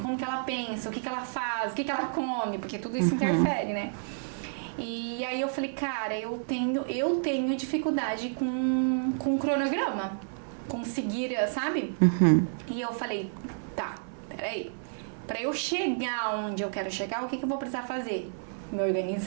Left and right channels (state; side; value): silent; left; 58 dB below the other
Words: como que ela pensa, o que ela faz, o que ela come, porque tudo isso interfere, né? E aí eu falei, cara, eu tenho dificuldade com cronograma, com seguir, sabe? E eu falei, tá, peraí, pra eu chegar onde eu quero chegar, o que eu vou precisar fazer? Me